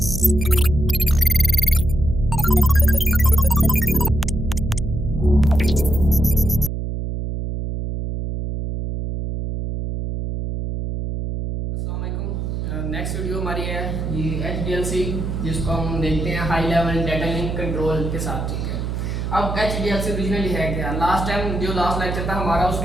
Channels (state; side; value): noise; right; hum, 3 dB below the sound